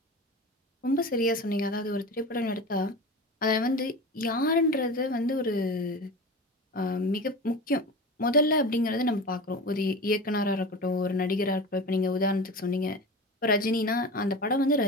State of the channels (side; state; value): both; normal; correlation 0.31